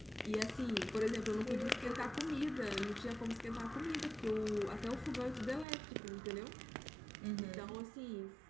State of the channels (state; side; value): drops out; left; at 5.7 s